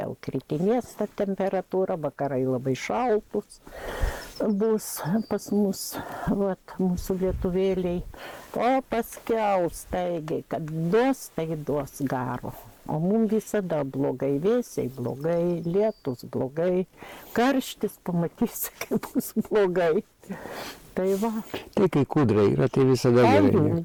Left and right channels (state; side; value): identical; both; correlation 1.00